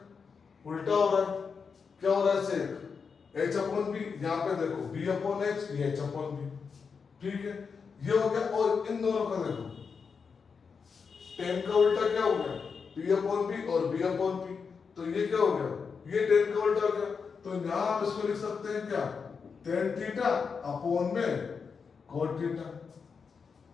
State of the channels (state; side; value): quieter; right; 5.6 dB